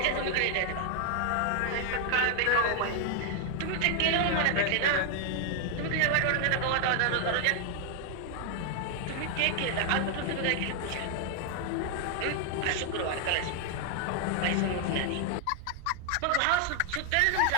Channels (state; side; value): different; both; correlation 0.00